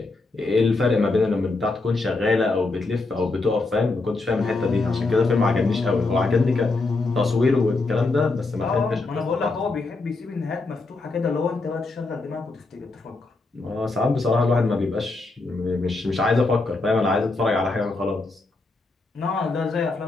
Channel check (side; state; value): right; quieter; 3.5 dB